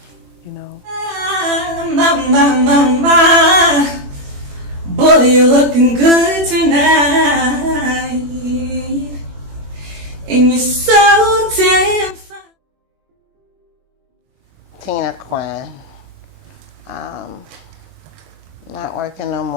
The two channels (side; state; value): left; late; 21 ms